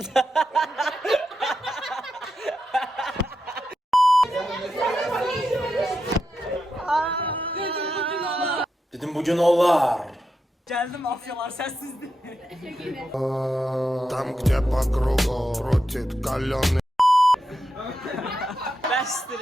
Dedim bugün olar. Gəldim mafyalar səssizdir. Tam где по кругу крутит каленый.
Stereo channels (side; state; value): both; normal; correlation 0.86